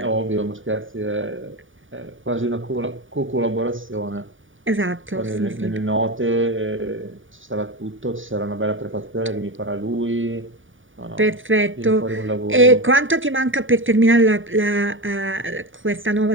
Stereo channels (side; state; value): left; late; 0.57 ms